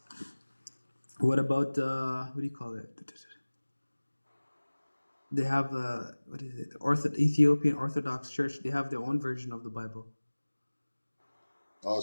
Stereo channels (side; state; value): both; inverted; correlation -1.00